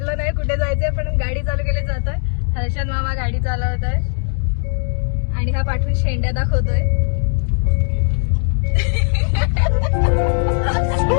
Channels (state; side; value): silent; right; 60 dB below the other